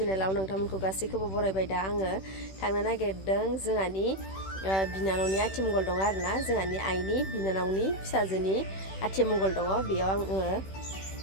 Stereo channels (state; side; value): late; right; 16 ms